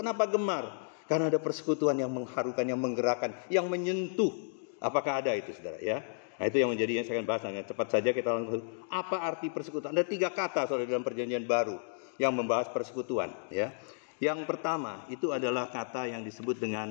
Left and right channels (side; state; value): right; silent; digital silence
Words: gemar? Karena ada persekutuan yang mengharukan, yang menggerakkan, yang menyentuh. Apakah ada itu, saudara? Ya. Nah, itu yang menjadi yang saya akan bahas dengan cepat saja kita langsung. Apa arti persekutuan? Ada 3 kata, saudara, dalam Perjanjian Baru yang membahas persekutuan. Ya. Yang pertama itu adalah kata yang disebut